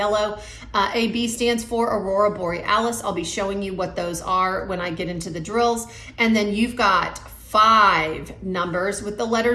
AB stands for Aurora Borealis. I'll be showing you what those are when I get into the drills. And then you've got 5 numbers with the letter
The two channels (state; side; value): identical; both; correlation 1.00